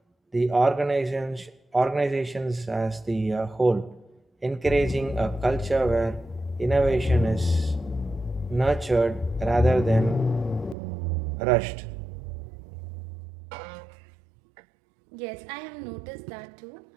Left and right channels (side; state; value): left; drops out; at 10.8 s